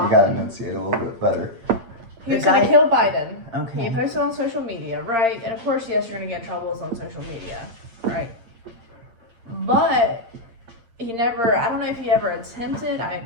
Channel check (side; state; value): left; late; 8.7 ms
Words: you gotta enunciate a little bit better. He was The going guy- to kill Biden. Okay. He posted on social media, right? And of course, yes, you're going to get in trouble on social media, right? But he never, I don't know if he ever attempted, I